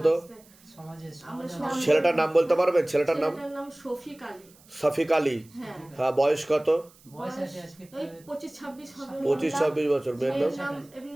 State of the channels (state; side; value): noise; right; hiss, 27 dB below the sound